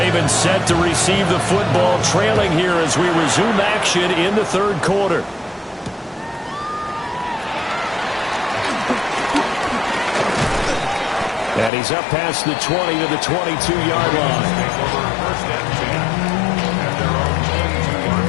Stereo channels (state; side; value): drops out; right; at 11.7 s